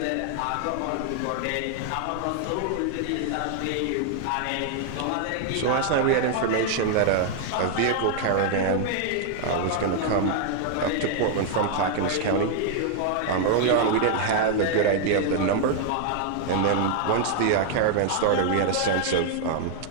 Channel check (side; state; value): both; different; correlation 0.00